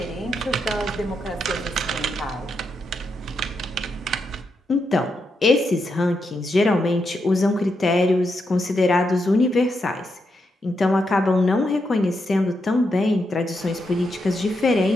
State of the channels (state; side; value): normal; both; correlation 0.83